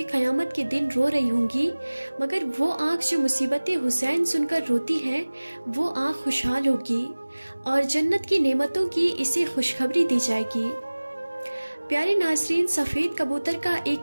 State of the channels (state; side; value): inverted; both; correlation -1.00